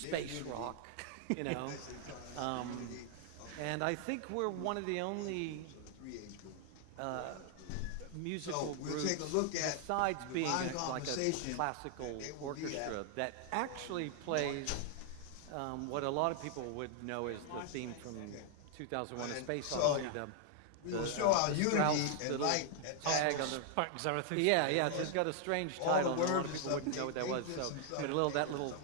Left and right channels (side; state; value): both; different; correlation 0.00